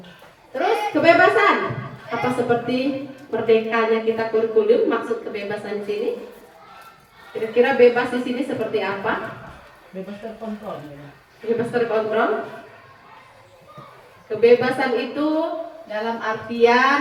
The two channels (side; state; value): both; identical; correlation 1.00